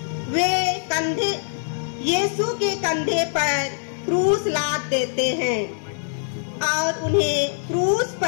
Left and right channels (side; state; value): right; silent; digital silence